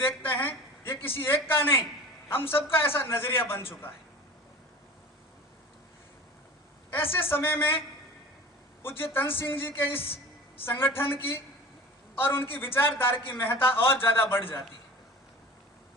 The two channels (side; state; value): both; normal; correlation 0.38